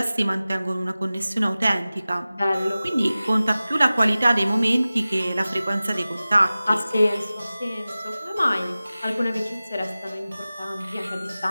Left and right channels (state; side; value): inverted; both; correlation -0.97